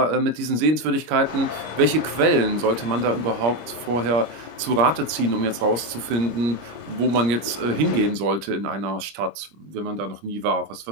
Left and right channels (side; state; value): left; late; 25 ms